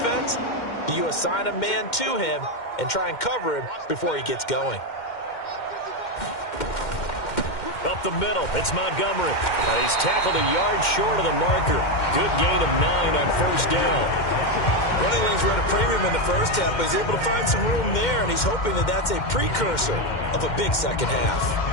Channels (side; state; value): right; late; 2.1 ms